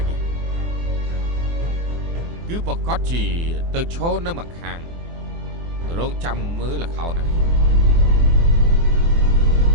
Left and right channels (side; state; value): left; late; 24 ms